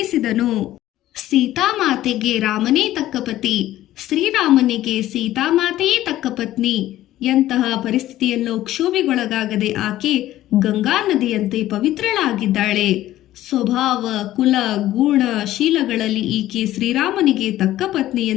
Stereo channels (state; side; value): quieter; right; 14.3 dB